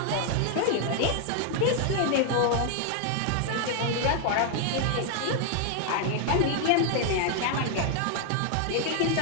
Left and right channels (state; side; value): different; both; correlation 0.00